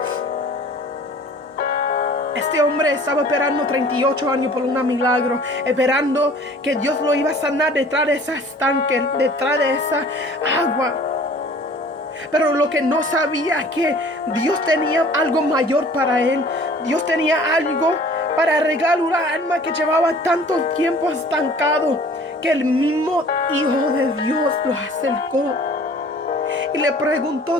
Este hombre estaba esperando 38 años por un milagro, esperando que Dios lo iba a sanar detrás de ese estanque, detrás de esa agua. Pero lo que no sabía es que Dios tenía algo mayor para él. Dios tenía algo para arreglar una alma que llevaba tanto tiempo estancado, que el mismo Hijo de Dios lo acercó y le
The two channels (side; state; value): both; normal; correlation 0.49